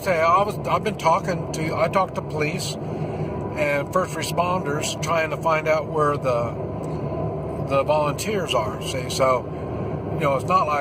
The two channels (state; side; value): identical; both; correlation 1.00